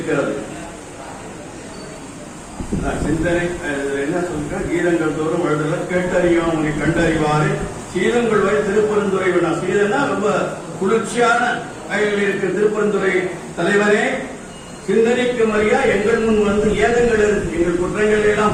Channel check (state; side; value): identical; both; correlation 1.00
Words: சிந்தனை என்ன சொல்ற, கீதங்கள் தோறும் எழுதல கேட்டறியும் உன்னை கண்டறிவாறு சீதங்கள் வரை திருப்பெருந்துறை வேணா. சீதனா ரொம்ப குளிர்ச்சியான இருக்கிற திருப்பெருந்துறை தலைவரே, சிந்தனைக்கு மரியா எங்கள் முன் வந்து ஏதங்கள் எங்கள் குற்றங்களை